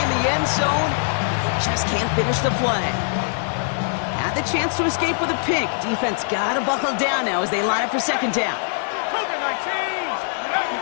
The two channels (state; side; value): silent; right; digital silence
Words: the end zone. Just can't finish the play. Had the chance to escape with a pick. Defense got to buckle down now as they line up for second down.